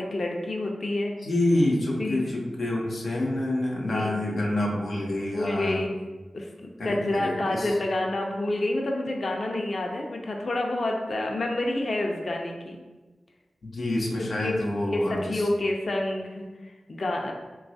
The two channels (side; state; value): both; normal; correlation 0.94